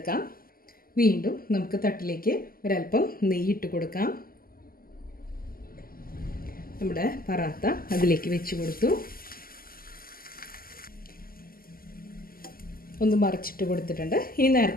വീണ്ടും നമുക്ക് തട്ടിലേക്ക് ഒരല്പം നെയ്യിട്ട് കൊടുക്കാം. നമ്മുടെ പൊറോട്ട അതിലേക്ക് വെച്ച് കൊടുത്തു. ഒന്ന് മറിച്ചിട്ട് കൊടുത്തിട്ടുണ്ട്. ഇനി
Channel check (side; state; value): right; late; 0.42 ms